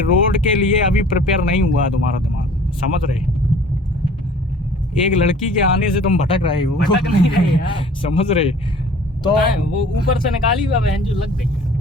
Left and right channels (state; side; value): normal; both; correlation 0.49